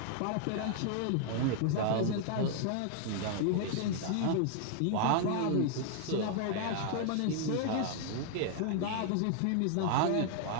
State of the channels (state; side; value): different; both; correlation 0.00